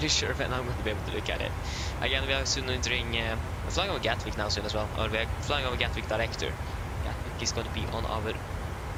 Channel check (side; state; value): both; identical; correlation 1.00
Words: sure when I'm going to be able to look at it. Again, we are soon entering... we're flying over Gatwick now soon as well. Or we're flying over Gatwick director. Gatwick is going to be on our...